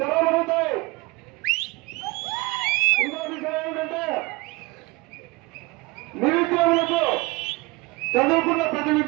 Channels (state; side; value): quieter; left; 23.9 dB